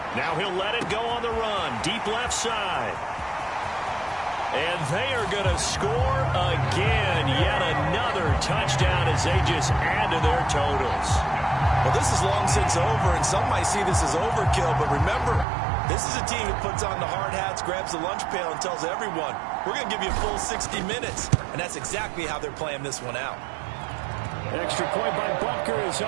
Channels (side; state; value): left; drops out; at 15.5 s